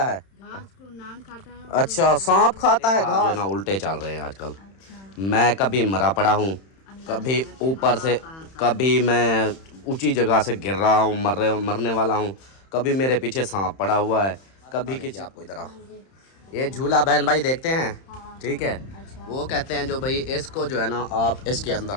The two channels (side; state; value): right; late; 31 ms